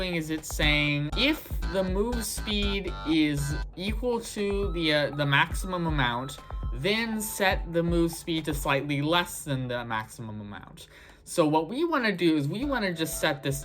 is it's saying if the move speed is equal to the maximum amount, then set the move speed to slightly less than the maximum amount. So what we want to do is we want to just set this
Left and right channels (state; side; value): identical; both; correlation 1.00